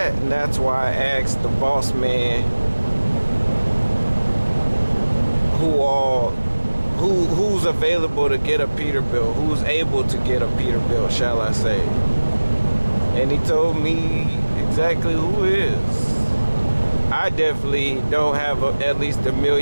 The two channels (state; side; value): inverted; both; correlation -1.00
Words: And that's why I asked the boss man who's available to get a Peterbilt, who's able to get a Peterbilt, shall I say. And he told me exactly who is. I definitely don't have at least 1